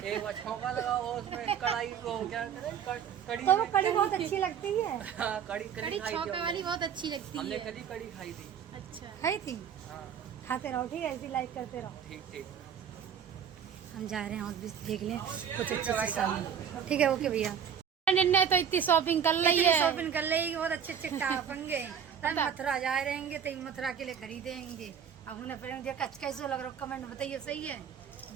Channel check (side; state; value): left; quieter; 8.0 dB